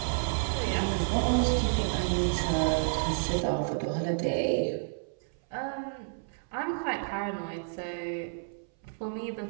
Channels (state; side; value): silent; left; 57 dB below the other